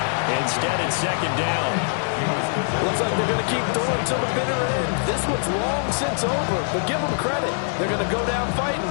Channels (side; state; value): right; silent; 63 dB below the other